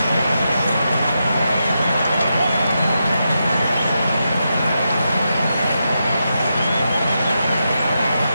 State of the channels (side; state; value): both; inverted; correlation -0.86